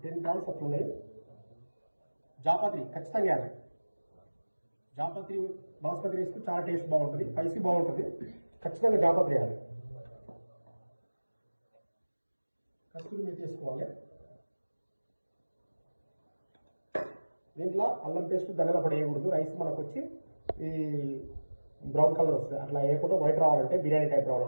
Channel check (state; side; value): inverted; both; correlation -1.00